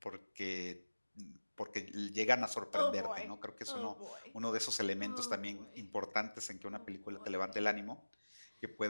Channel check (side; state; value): both; inverted; correlation -1.00